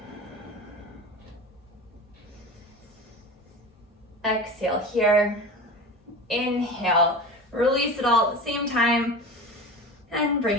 Exhale here, inhale, release it all at the same time, and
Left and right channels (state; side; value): normal; both; correlation 0.31